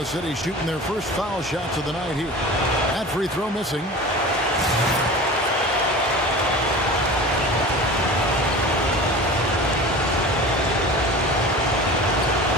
City shooting their first foul shots of the night here. That free throw missing.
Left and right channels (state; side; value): normal; both; correlation 0.36